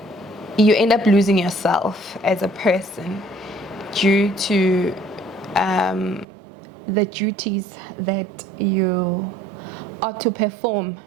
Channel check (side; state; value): left; drops out; at 6.2 s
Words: you end up losing yourself as a person due to the duties that you are to perform